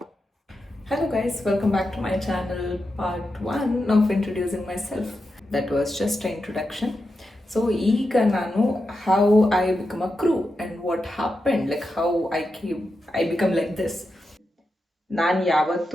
Hello guys, welcome back to my channel, part 1 of introducing myself. That was just an introduction. So ಈಗ ನಾನು how I become a crew and what happened, like how I become like this. ನಾನು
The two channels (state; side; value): normal; both; correlation 0.88